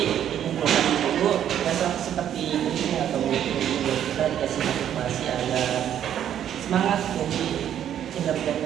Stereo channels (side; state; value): left; quieter; 10.2 dB